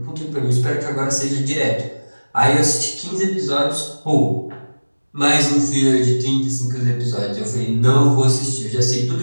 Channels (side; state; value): both; inverted; correlation -1.00